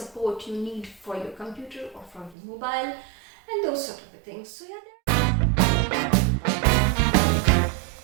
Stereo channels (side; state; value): left; drops out; at 2.4 s